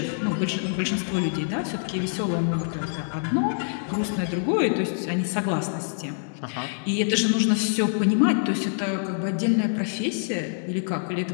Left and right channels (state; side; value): silent; right; digital silence